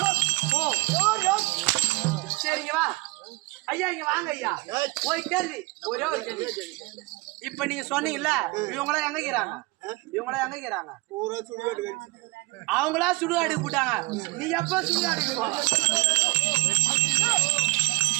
ஓ யார் யார்? சரிங்க வா ஐயா இங்க வாங்க ஐயா. ஒரு கேள்வி, ஒரே ஒரு கேள்வி. இப்ப நீங்க சொன்னீங்கல்ல இவங்களாம் எங்க இருக்கிறாங்க? இவங்களாம் எங்க இருக்கிறாங்க? பூரா சுடுகாடு கழிச்சு. அவங்களா சுடுகாடு போட்டாங்க. நீ எப்ப சுடுகாடுக்கு போ?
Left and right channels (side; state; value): left; quieter; 23.8 dB